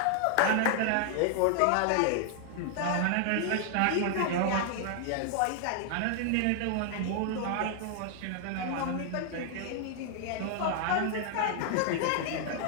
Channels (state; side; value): different; both; correlation 0.00